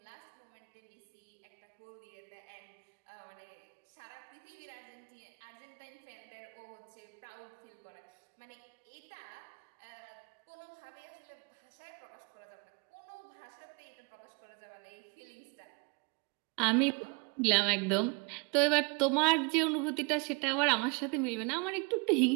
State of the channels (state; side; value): quieter; left; 32.1 dB